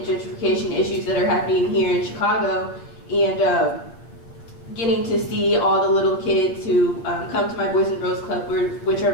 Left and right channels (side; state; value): right; late; 8.8 ms